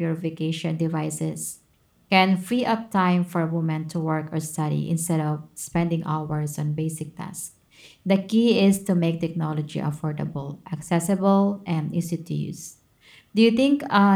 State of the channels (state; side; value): identical; both; correlation 1.00